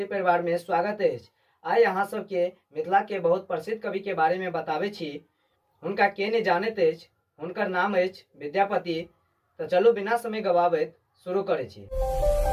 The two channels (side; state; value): both; identical; correlation 1.00